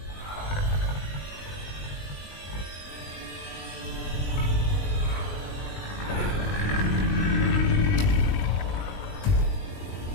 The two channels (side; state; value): right; late; 20 ms